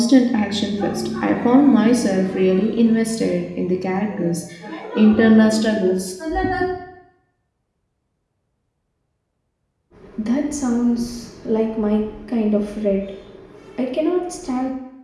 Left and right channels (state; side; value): identical; both; correlation 1.00